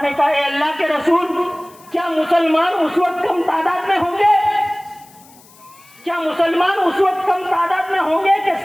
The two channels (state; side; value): noise; left; hiss, 26 dB below the sound